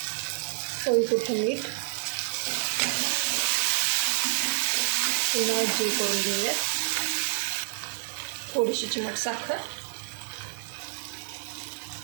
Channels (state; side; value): silent; left; digital silence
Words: चवीपुरतं मीठ, पुन्हा एकजीव करून घेऊयात। थोडीशी चिमट साखर,